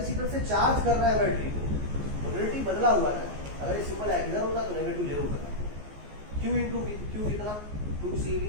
से चार्ज कर रहे हैं बैटरी को, पोलैरिटी बदला हुआ है, अगर सिंपल इधर होता तो नेगेटिव जरूर होता। Q इंटू V, Q कितना 2CV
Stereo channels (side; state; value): left; late; 14 ms